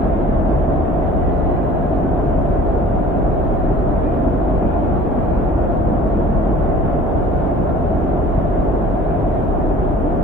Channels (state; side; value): normal; both; correlation 0.48